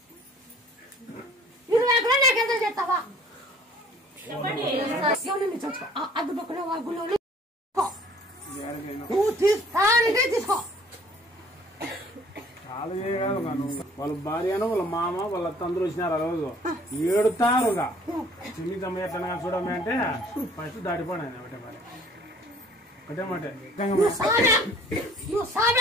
20 కూడా నాకు ఎంత చేస్తావా. చూసుకో అడ్డు పక్కన గుళ్ళు నువ్వు తీసుకో. చాలా చేయగలరు కాను. వాళ్ళ భార్యను వాళ్ళ మామ వాళ్ళ అత్త అందరూ వచ్చినారు. ఆ రోజు ఏడుతారుగా చిన్ని తమ్మ ఎట్లా చూడమే అంటే ఫస్ట్ దాటిపోయినా ఒకటే మరి ఒకటే మాట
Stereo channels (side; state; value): both; normal; correlation 0.54